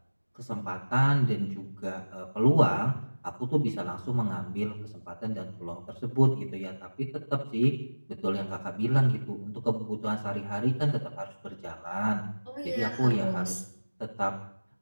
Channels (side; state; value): both; inverted; correlation -1.00